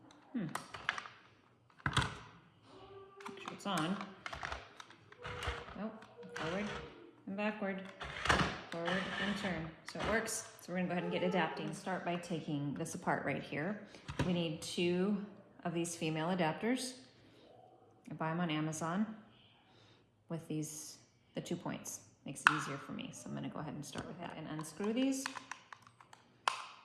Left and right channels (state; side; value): identical; both; correlation 1.00